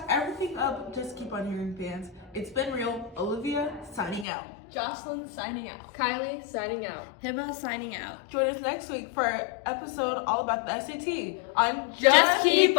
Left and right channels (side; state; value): right; drops out; at 4.2 s